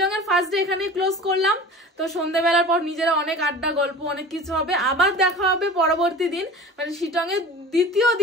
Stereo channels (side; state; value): both; normal; correlation 0.39